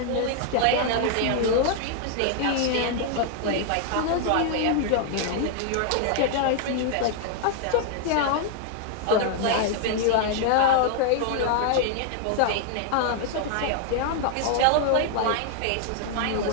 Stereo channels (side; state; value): both; different; correlation 0.00